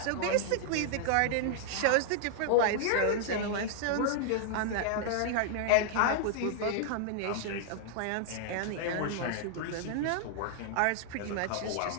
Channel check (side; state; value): both; different; correlation -0.01